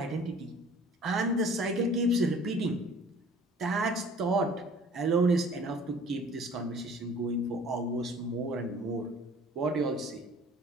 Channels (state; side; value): normal; both; correlation 0.50